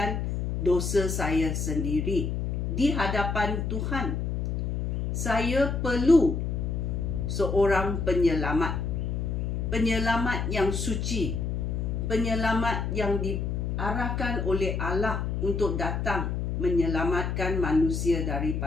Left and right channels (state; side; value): noise; left; hum, 1 dB below the sound